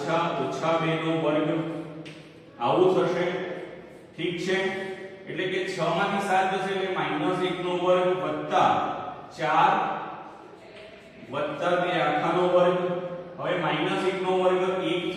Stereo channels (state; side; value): identical; both; correlation 1.00